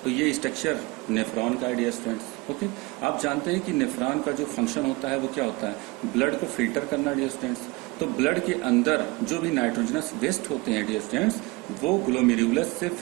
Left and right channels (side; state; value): left; quieter; 24.4 dB